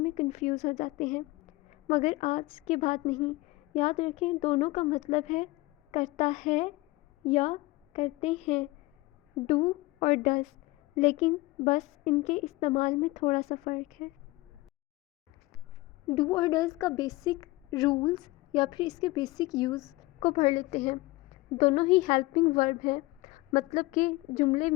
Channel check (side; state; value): right; quieter; 20.8 dB